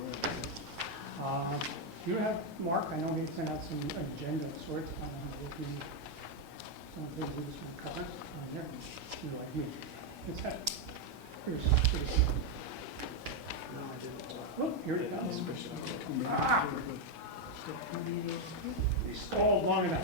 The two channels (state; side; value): normal; both; correlation 0.02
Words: You have, Mark, I know he had sent out an agenda of sorts. I don't know how to look through some of the things he was going to cover on there. You're like me. It's that. Here's no, I didn't. Oh, here he comes. Ah! He stalled long